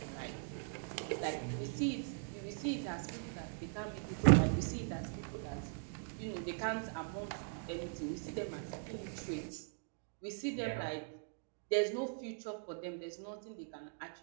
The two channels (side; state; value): left; silent; digital silence